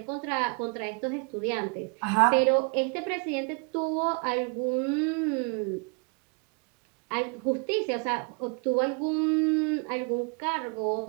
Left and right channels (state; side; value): quieter; left; 34.9 dB